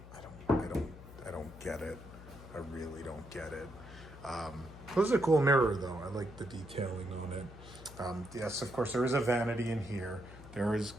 don't get it. I really don't get it. This is a cool mirror, though. I like the detailing on it. Yes, of course, there is a vanity in here. There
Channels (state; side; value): noise; left; hum, 16 dB below the sound